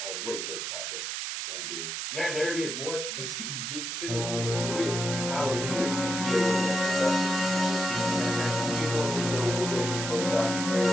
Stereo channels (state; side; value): noise; right; hiss, 4 dB below the sound